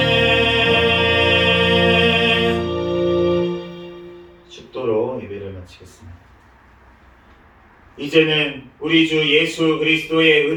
아멘. 축도로 예배를 마치겠습니다. 이제는 우리 주 예수 그리스도의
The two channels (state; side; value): identical; both; correlation 1.00